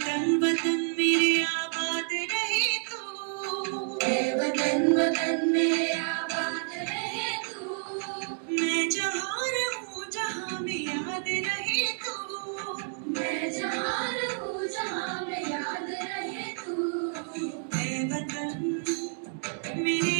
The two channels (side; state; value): left; silent; digital silence